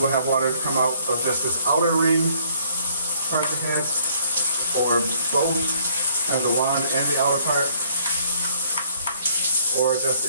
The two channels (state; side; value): inverted; both; correlation -0.64